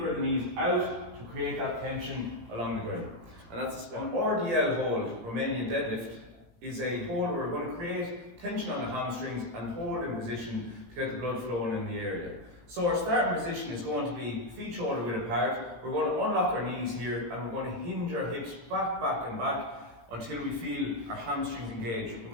the knees out to create that tension along the groin. And that's a squat. An RDL hold, Romanian deadlift, is a hold where we're going to create tension on the hamstrings and hold in position to get the blood flowing in the area. So our starting position is going to be feet shoulder width apart. We're going to unlock our knees here and we're going to hinge our hips back and back until we feel our hamstrings engage. We're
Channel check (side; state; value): left; late; 17 ms